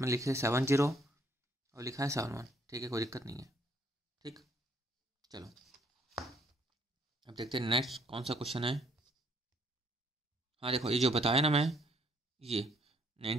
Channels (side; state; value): both; normal; correlation 0.66